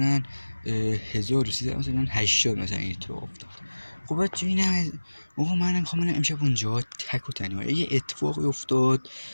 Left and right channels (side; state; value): both; inverted; correlation -1.00